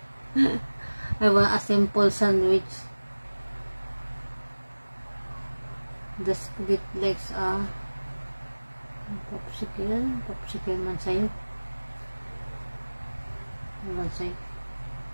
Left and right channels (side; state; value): both; inverted; correlation -1.00